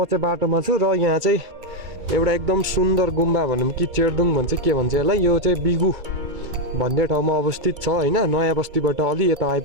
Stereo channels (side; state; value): left; late; 2.3 ms